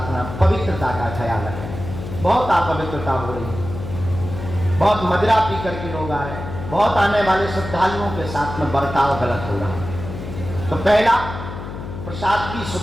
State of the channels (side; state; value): left; noise; hum, 9 dB below the sound